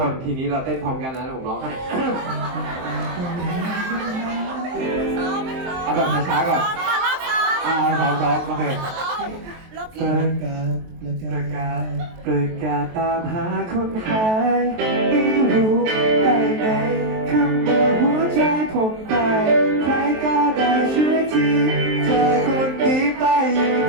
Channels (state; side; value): late; left; 23 ms